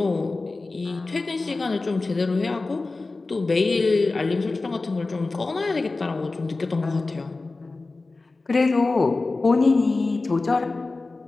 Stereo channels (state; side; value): quieter; right; 3.5 dB